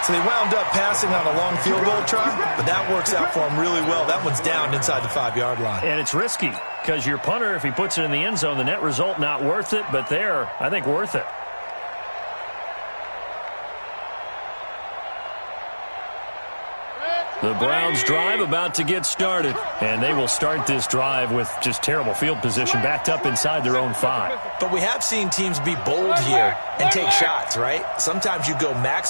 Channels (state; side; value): inverted; both; correlation -1.00